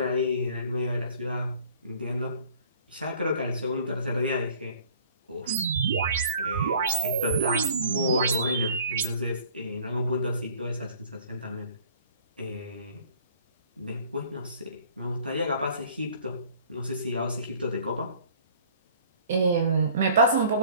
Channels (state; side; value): inverted; both; correlation -0.53